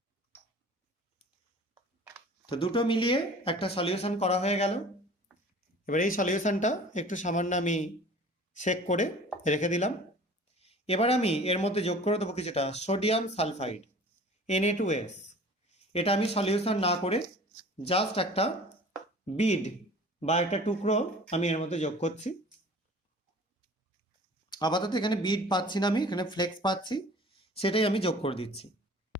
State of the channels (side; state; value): both; normal; correlation 0.45